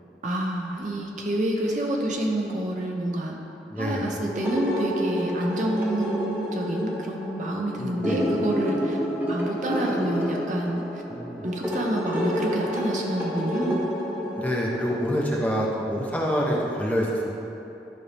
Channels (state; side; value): normal; both; correlation 0.73